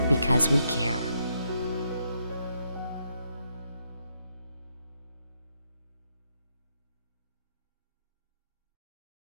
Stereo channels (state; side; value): inverted; both; correlation -0.78